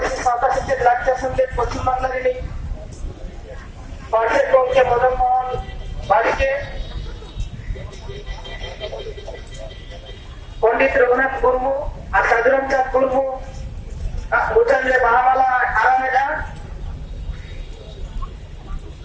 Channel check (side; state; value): both; identical; correlation 1.00